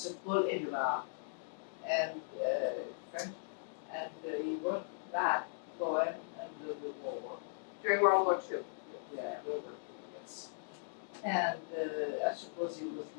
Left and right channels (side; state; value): right; silent; digital silence